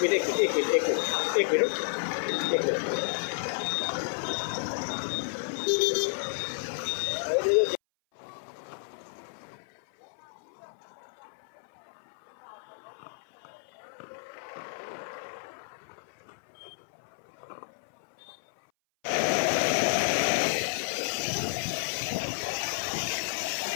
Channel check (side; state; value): right; silent; 57 dB below the other